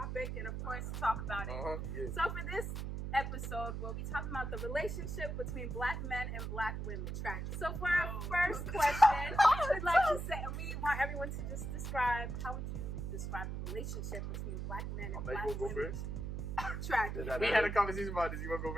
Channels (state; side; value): noise; right; hum, 4 dB below the sound